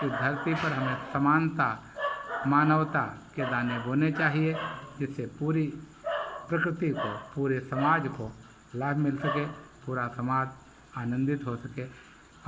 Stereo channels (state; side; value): identical; both; correlation 1.00